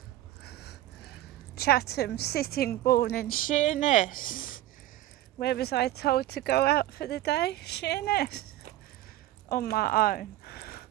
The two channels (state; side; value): quieter; left; 14.9 dB